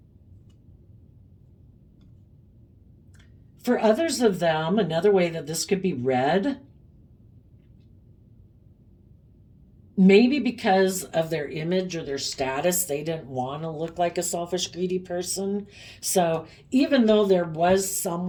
for others of them, another way that this could be read maybe because of their image or their status, they didn't want to look like a selfish, greedy person. So even though there was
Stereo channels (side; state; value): both; identical; correlation 1.00